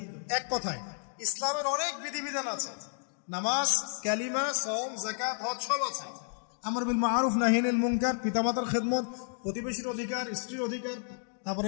এক কথায় ইসলামের অনেক বিধিবিধান আছে, নামাজ, কালিমা, সাওম, যাকাত, হজ সব আছে। আমর বিল মারুফ, নাহি আনিল মুনকার, পিতামাতার খেদমত, প্রতিবেশীর অধিকার, স্ত্রীর অধিকার,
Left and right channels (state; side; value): silent; right; digital silence